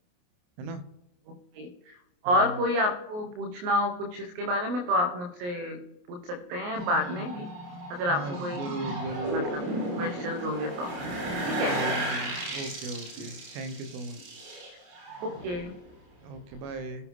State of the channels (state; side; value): late; left; 28 ms